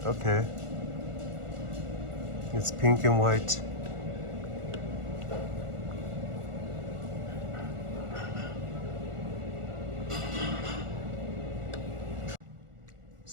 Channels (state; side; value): late; left; 1.4 ms